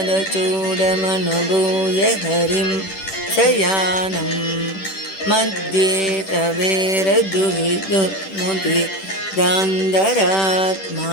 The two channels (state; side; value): late; right; 10 ms